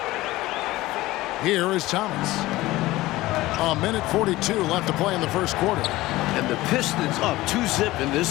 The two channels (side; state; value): right; quieter; 18.1 dB